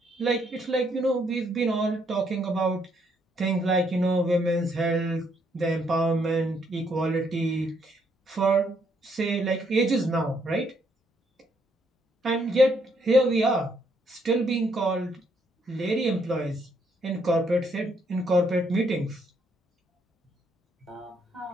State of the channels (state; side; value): normal; both; correlation 0.72